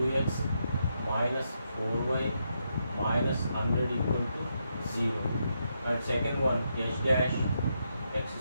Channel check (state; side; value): inverted; both; correlation -0.81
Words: minus 4y minus 100 equal to 0, and second one h dash x